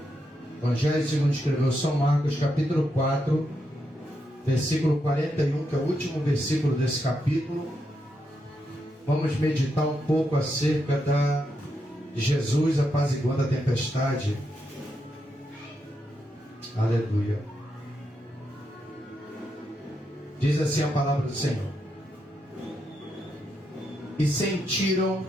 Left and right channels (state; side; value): normal; both; correlation 0.82